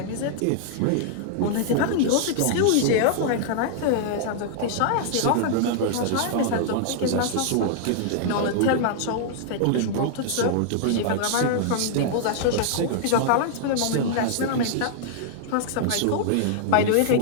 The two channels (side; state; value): both; different; correlation -0.01